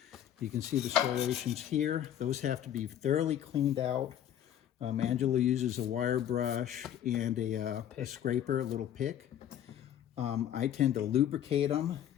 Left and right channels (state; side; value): quieter; right; 10.6 dB